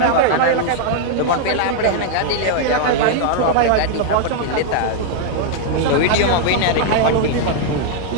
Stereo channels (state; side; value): different; both; correlation 0.00